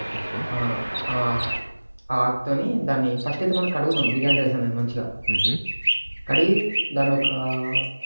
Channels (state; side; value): inverted; both; correlation -1.00